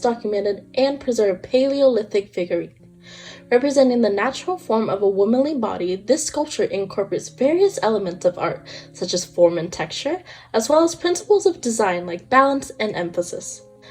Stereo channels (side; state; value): both; identical; correlation 1.00